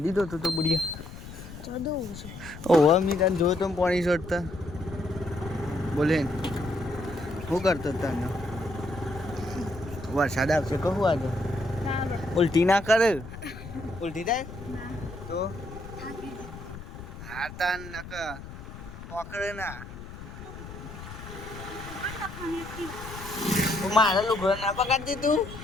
ધોતો તો બુડિયા ચડવું છે. ઓહો મી તને જોયો તો પાણી છોડતા બોલે શું કરતો તને વરસાદ આવશે કહું આજે ઉલટી ના કરે ઉલટી થાય તો હા તાન નક પકડે ના મારા લુગડો ના પકડતી તું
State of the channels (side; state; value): left; noise; rumble, 13 dB below the sound